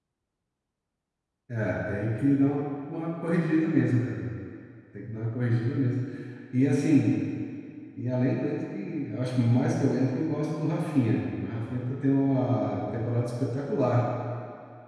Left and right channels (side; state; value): both; identical; correlation 1.00